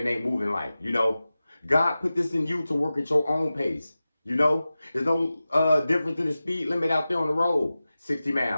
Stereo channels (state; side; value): inverted; both; correlation -0.95